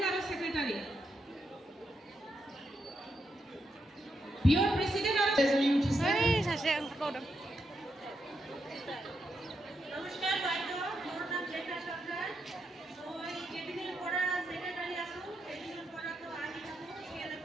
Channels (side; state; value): both; normal; correlation 0.82